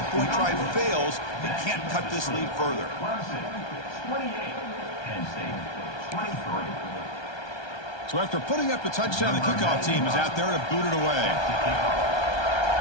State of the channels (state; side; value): late; right; 1.3 ms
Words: try fails. He can't cut this lead further. Clemson, 28. Penn State, 23. So after putting up the touchdown, the kickoff team is out there to boot it away.